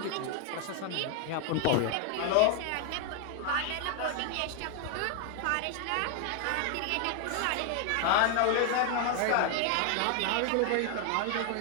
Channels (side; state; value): both; different; correlation 0.00